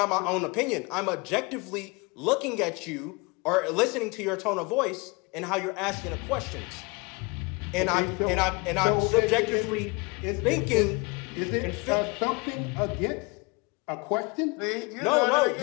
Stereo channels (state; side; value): quieter; right; 28.2 dB